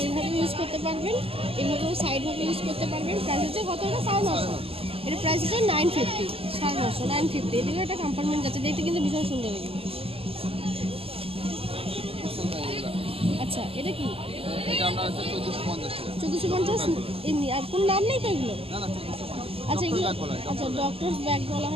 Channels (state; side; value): late; left; 0.28 ms